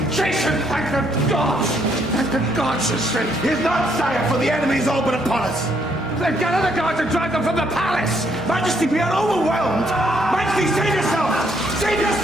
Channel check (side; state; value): both; normal; correlation 0.71